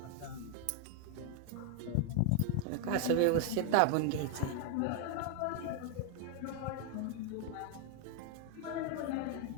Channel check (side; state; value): both; different; correlation 0.00